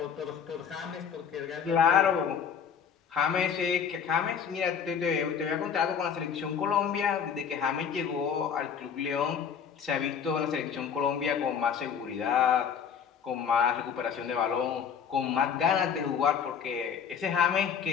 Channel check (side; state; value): right; quieter; 7.3 dB